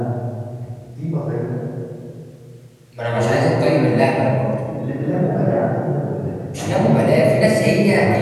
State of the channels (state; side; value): identical; both; correlation 1.00